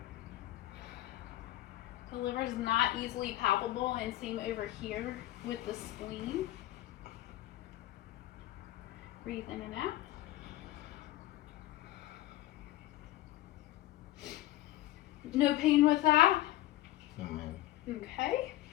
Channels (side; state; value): right; quieter; 15.8 dB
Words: The liver is not easily palpable, and same over here with the spleen. Breathe in and out. No pain with that? No, ma'am. Okay.